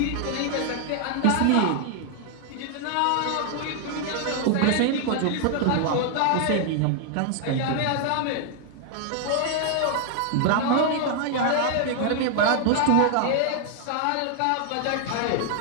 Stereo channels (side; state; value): both; different; correlation 0.00